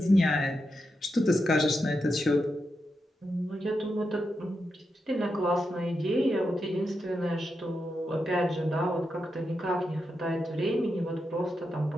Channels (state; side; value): normal; both; correlation 0.86